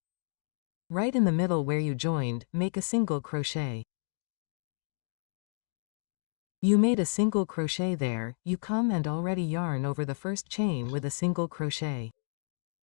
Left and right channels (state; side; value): silent; right; digital silence